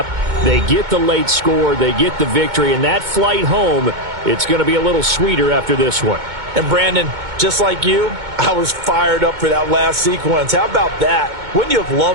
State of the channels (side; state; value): left; late; 2.2 ms